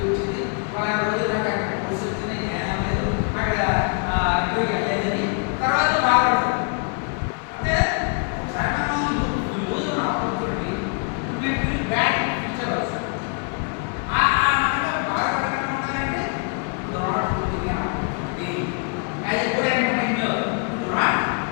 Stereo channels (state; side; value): quieter; right; 37.5 dB